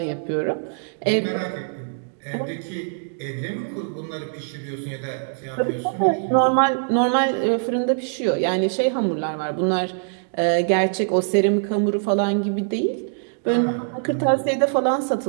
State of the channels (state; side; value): silent; left; digital silence